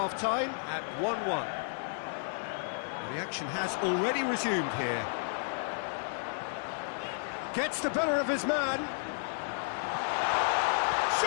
at 1-1. Well, the action has already resumed here. Gets the better of his man.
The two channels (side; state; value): right; silent; digital silence